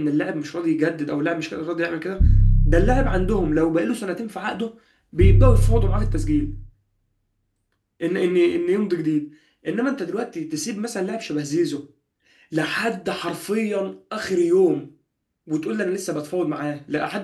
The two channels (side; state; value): both; identical; correlation 1.00